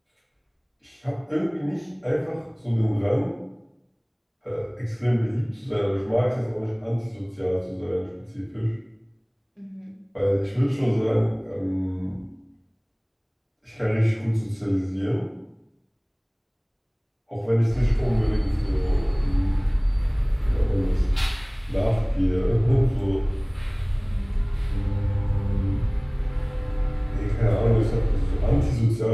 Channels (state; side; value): identical; both; correlation 1.00